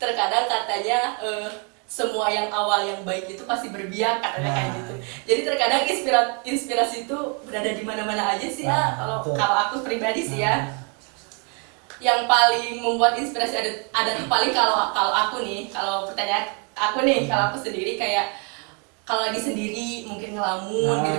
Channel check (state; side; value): quieter; left; 36.2 dB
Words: Terkadang katanya semua yang awal yang baik itu pasti berbiak, katanya kayak gitu. Jadi terkadang inspirasi itu berada di mana-mana aja sih ya. Kalau aku pribadi sih ya. Yang paling membuat inspirasi ada tuh paling kalau aku nih, kalau pertanyaan aku nih, kalau aku sendiri kayak kalau lagi sendiri mungkin ngelamun